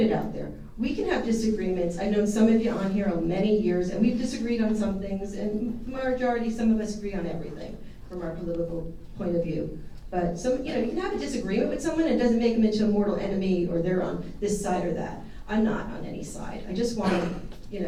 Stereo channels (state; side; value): identical; both; correlation 1.00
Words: out there. We can have disagreements. I've known some of you on here many years, and we've disagreed on some things, and majority, some of us agree on everything from our political point of view. But some, you know, you can have a disagreement with someone, and it doesn't make them into a mortal enemy, or they're on this side or that. I'm not on any side. I just want to, you